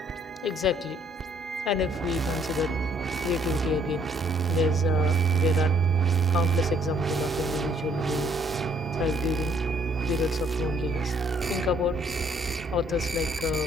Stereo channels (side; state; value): both; normal; correlation 0.64